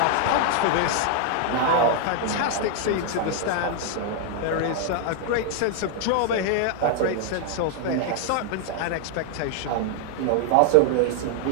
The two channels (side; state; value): both; different; correlation 0.00